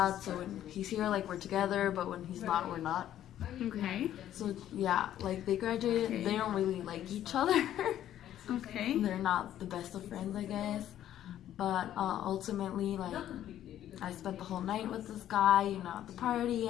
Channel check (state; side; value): quieter; right; 11.7 dB